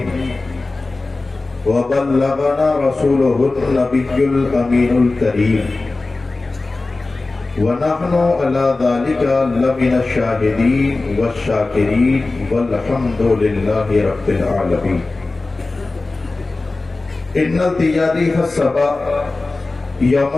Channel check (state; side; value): quieter; right; 3.4 dB